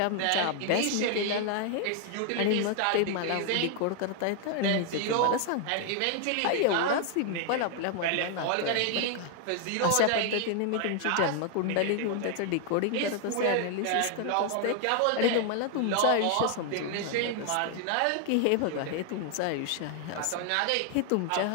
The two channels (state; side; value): different; both; correlation 0.00